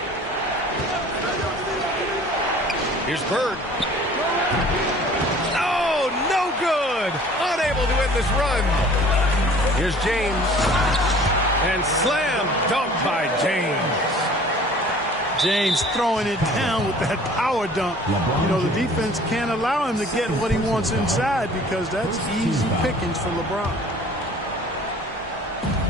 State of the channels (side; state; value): both; normal; correlation 0.49